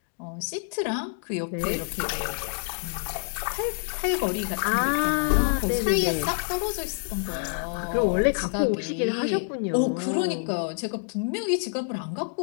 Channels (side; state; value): right; silent; 57 dB below the other